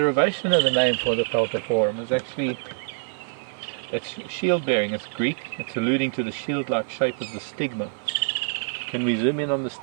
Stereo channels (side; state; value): left; silent; 55 dB below the other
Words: of the name for the Peltiforum is actually, it's shield bearing. It's Greek. It's alluding to the shield-like shape of the stigma. Can we zoom in on the